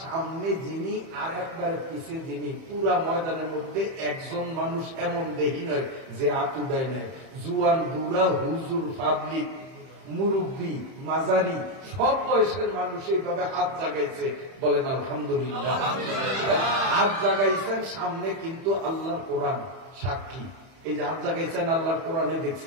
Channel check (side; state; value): left; late; 31 ms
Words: সামনে যিনি আর একবারে পিছিয়ে যিনি, পুরা ময়দানের মধ্যে একজন মানুষ এমন দেখি নয় যে হাত উদায় নেয়। জুয়ান বুড়া হুজুর পাবলিক মুরব্বী মাজারি সব বয়সের মানুষ এইভাবে হাত জাগাইছে। বলেন আলহামদুলিল্লাহ। হাত জাগাইছেন সামনে, কিন্তু আল্লাহর কোরআন সাক্ষী। এই যে হাত জাগাইছেন আল্লাহর কোরআনে